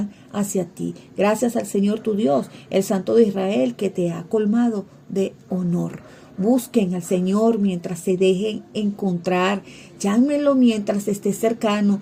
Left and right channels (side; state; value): both; identical; correlation 1.00